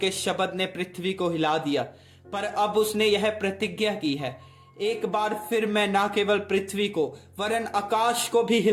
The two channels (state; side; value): identical; both; correlation 1.00